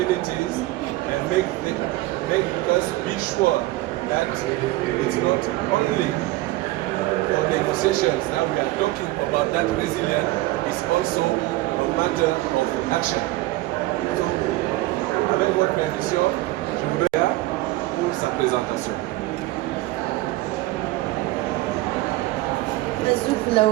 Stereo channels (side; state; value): left; quieter; 18.5 dB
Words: and make us be sure that it's not only for negotiations that we are talking about that resilience, it's also a matter of action. So, avec votre permission, je voudrais pour sa présentation.